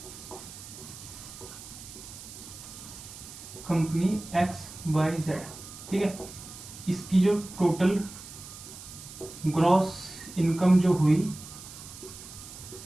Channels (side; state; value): right; noise; hiss, 14 dB below the sound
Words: कंपनी XYZ, ठीक है। इसकी जो टोटल ग्रॉस इनकम जो हुई